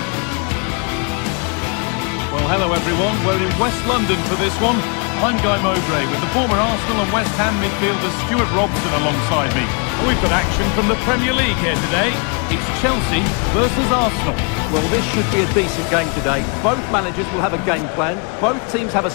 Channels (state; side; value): quieter; right; 35.3 dB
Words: Well, hello everyone, we're in West London for this one. I'm Guy Mowbray with the former Arsenal and West Ham midfielder Stuart Robson alongside me. And we've got action from the Premier League here today. It's Chelsea versus Arsenal. Well, this should be a decent game today. Both managers will have a game plan. Both teams have a